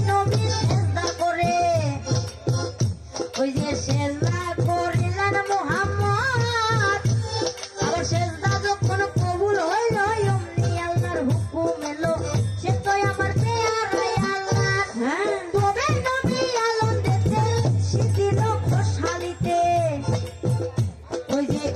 নবী সেজদা করে, ওই যে সেজদা করিলেন মুহাম্মদ, আবার সেজদা যখন কবুল হইল অমনি আল্লাহর হুকুম এলো, সে তো আমার পেয়ারাই আল্লাহর। তবে নবী আলম দেখতে শিথিল খোশালিতে, ওই যে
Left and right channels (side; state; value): both; identical; correlation 1.00